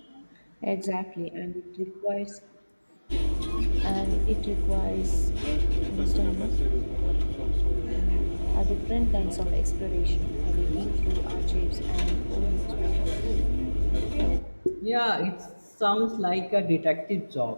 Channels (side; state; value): both; inverted; correlation -1.00